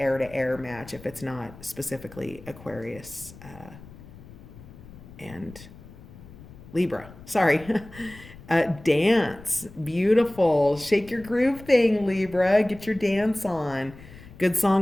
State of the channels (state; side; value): noise; left; rumble, 19 dB below the sound